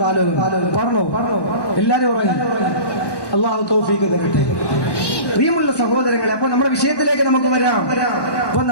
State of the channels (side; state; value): right; late; 1.1 ms